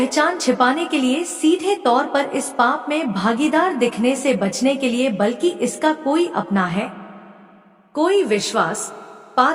छिपाने के लिए, सीधे तौर पर इस पाप में भागीदार दिखने से बचने के लिए, बल्कि इसका कोई अपना है, कोई विश्वास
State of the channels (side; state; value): both; identical; correlation 1.00